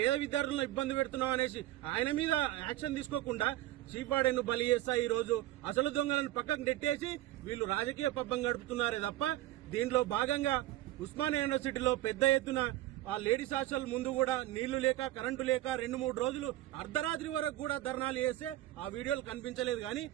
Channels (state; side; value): quieter; left; 15.4 dB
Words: విద్యార్థులను ఇబ్బంది పెడుతున్నావు అనేసి ఆయన మీద యాక్షన్ తీసుకోకుండా చీఫ్ వార్డెన్ బలి చేస్తా ఈ రోజు అసలు దొంగలను పక్కకు నెట్టేసి వీళ్ళు రాజకీయ పబ్బం గడుపుతున్నారే తప్ప దీంట్లో భాగంగా ఉస్మానియా యూనివర్సిటీలో పెద్ద ఎత్తున ఆ లేడీస్ హాస్టల్ ముందు కూడా నీళ్లు లేక, కరెంటు లేక 2-3 రోజులు అర్ధరాత్రి వరకు కూడా ధర్నాలు చేస్తే ఆ వీడియోలు కనిపించలేదు. కానీ